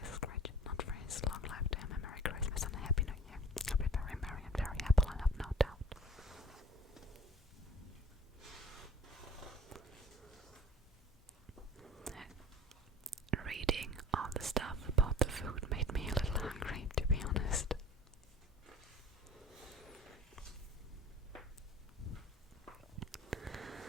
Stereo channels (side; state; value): both; normal; correlation 0.44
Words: Scrooge, not for his long life to him. A Merry Christmas and a Happy New Year. He'll be very merry and very happy, I have no doubt. Reading all the stuff about the food made me a little hungry, to be honest.